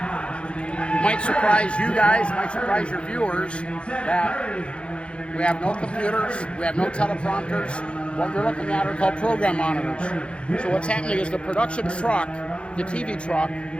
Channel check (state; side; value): late; right; 0.058 ms